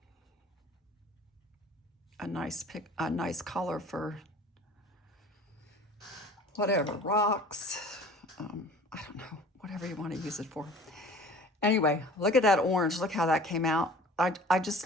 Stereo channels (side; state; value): both; normal; correlation 0.45